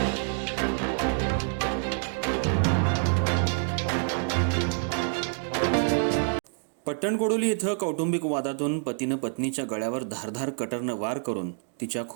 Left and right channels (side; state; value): left; silent; 58 dB below the other